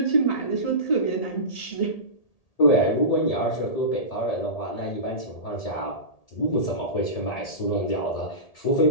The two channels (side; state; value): right; late; 1.8 ms